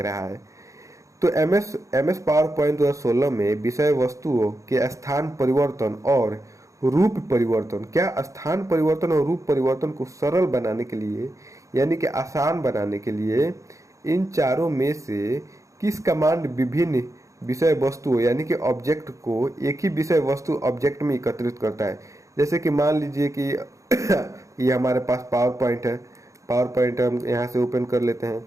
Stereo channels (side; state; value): left; late; 0.15 ms